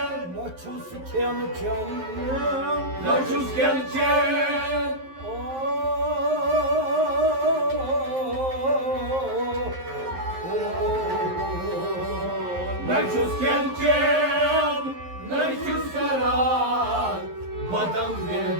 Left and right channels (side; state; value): left; late; 11 ms